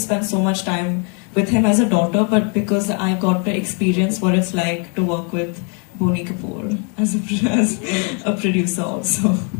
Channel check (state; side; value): quieter; right; 37.5 dB